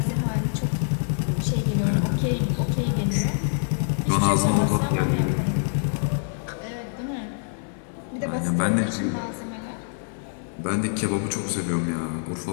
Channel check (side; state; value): right; silent; digital silence